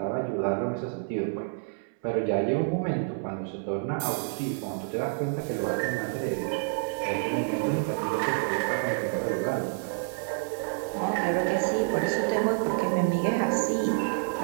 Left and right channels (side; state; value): left; silent; 59 dB below the other